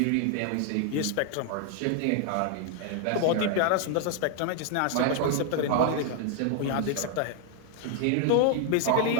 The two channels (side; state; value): both; different; correlation 0.00